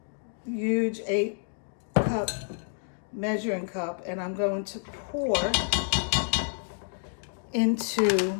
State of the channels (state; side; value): silent; right; digital silence